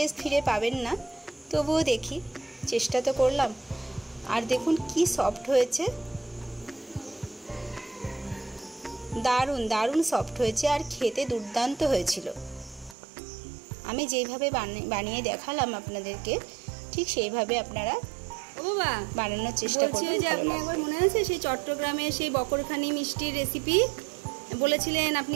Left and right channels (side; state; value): left; drops out; at 13.0 s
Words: ফিরে পাবেন না, তবুও দেখি, চেষ্টা তো করলাম। আর দেখুন কি সফট হয়েছে, দারুণ দারুণ সফট হয়েছে আর খেতে দুর্দান্ত হয়েছিল। আমি যেইভাবে বানিয়ে দেখালাম আপনাদেরকে, ঠিক সেইভাবে আপনারা বানানোর চেষ্টা করবেন। যে আপনি একবার মনে আছে সেই চট্টগ্রামে সেই বকরখানি মিষ্টির রেসিপি বলেছিলেন,